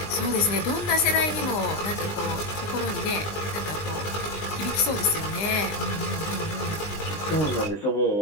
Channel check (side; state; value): right; late; 19 ms